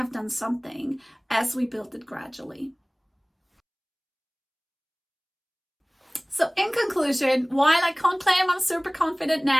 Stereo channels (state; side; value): identical; both; correlation 1.00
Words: done something, as we build it gradually. So in conclusion, while I can't claim I'm super confident